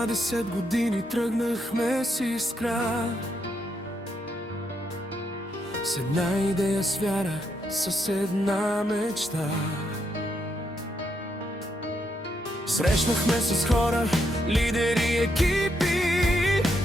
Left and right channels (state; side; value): normal; both; correlation 0.79